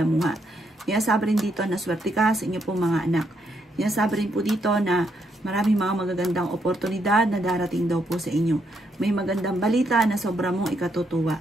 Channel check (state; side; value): normal; both; correlation 0.77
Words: Sinasabi rin dito na swerte ka sa inyo pong mga anak. Sinasabi rin po dito na maraming mga magagandang oportunidad na darating daw po sa inyo. May magandang balita na sobra mong